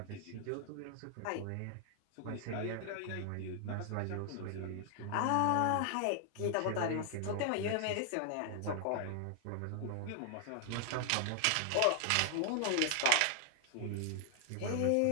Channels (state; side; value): different; both; correlation 0.00